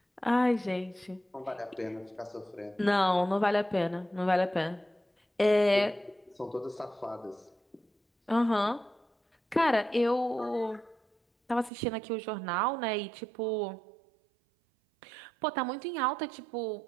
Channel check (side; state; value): left; drops out; at 11.7 s